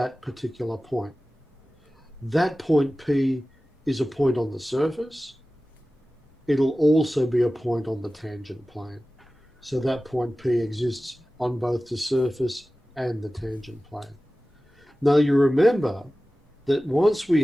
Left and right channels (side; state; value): both; normal; correlation 0.96